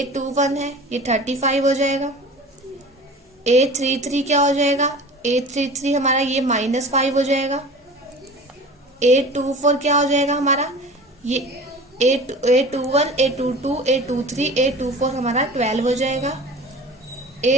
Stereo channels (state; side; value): normal; both; correlation 0.39